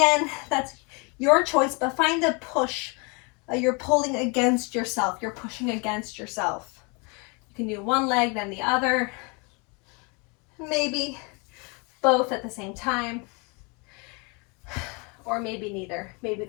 that's your choice, but find a push. You're pulling against yourself. You're pushing against yourself. You can do one leg, then the other. Maybe both at the same time. Or maybe neither. Maybe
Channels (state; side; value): quieter; right; 31.4 dB